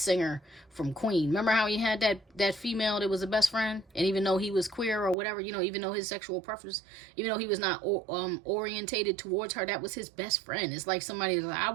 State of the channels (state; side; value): drops out; left; at 5.2 s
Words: from Queen. Remember how he had that female that was a best friend? And even though he was queer or whatever, you know, even though his sexual preference, even though he was not orientated towards her, that was his best friend. It's like somebody like, I